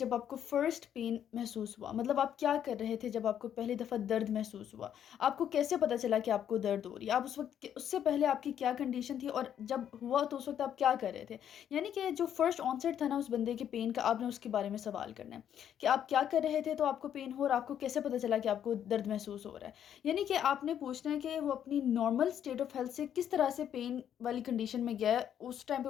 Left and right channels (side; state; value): right; quieter; 9.6 dB